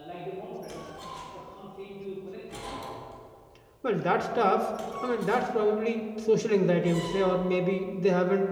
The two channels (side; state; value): both; identical; correlation 1.00